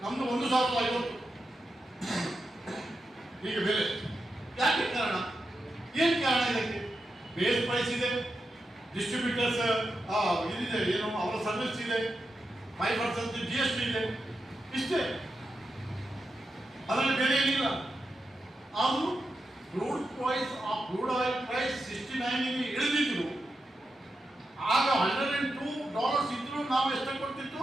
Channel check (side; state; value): both; normal; correlation 0.88